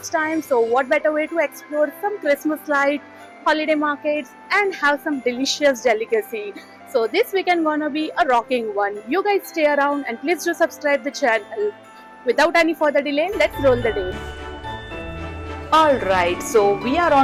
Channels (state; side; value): identical; both; correlation 1.00